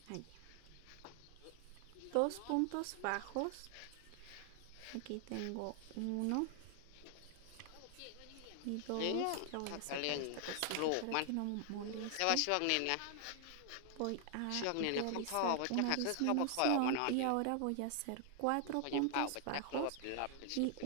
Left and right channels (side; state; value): both; different; correlation 0.00